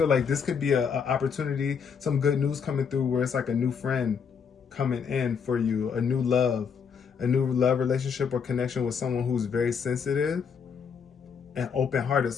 like this could be an opportunity, some good news coming through where it's like a new friend coming in for you, a new love relationship or connection with someone who's very sensitive and open-hearted,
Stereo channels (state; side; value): quieter; right; 6.6 dB